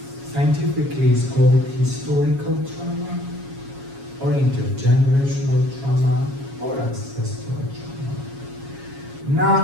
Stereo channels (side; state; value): left; late; 7.3 ms